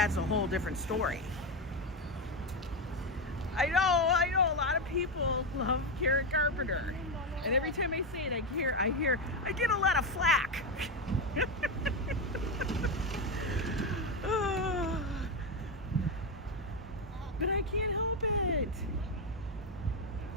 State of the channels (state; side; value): normal; both; correlation 0.10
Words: a whole different story. I know, a lot of people love Karen Carpenter. And every time I say it, I get a lot of flack. But I can't help it.